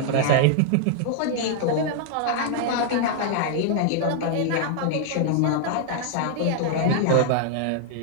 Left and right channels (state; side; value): different; both; correlation 0.00